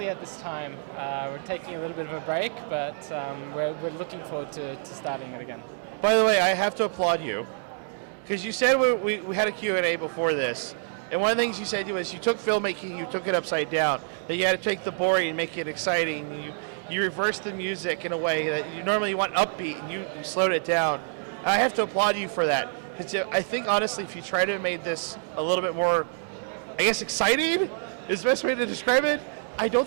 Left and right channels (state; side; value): silent; left; digital silence